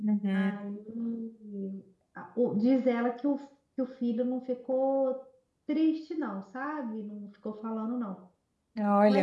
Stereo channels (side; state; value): both; identical; correlation 1.00